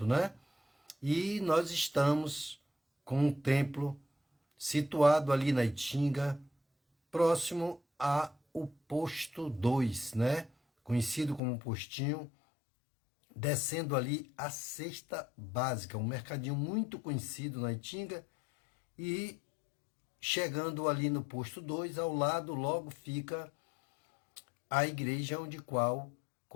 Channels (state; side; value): drops out; right; at 11.4 s